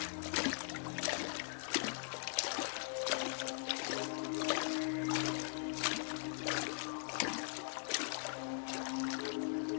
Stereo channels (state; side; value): silent; right; digital silence